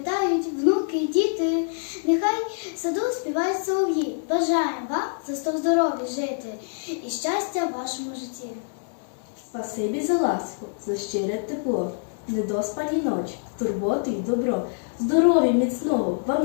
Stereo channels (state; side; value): silent; right; digital silence